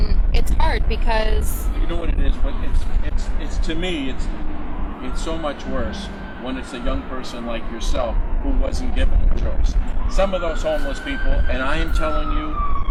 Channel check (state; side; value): identical; both; correlation 1.00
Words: it's hard because... You know what it is? But it's to me, it's so much worse when it's a young person like yourself who wasn't given a choice. Some of those homeless people, and I am telling you,